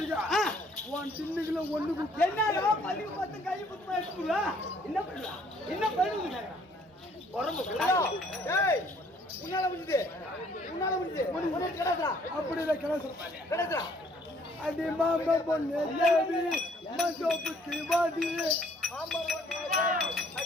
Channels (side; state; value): both; normal; correlation 0.62